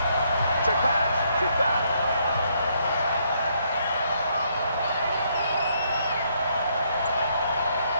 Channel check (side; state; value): both; inverted; correlation -0.72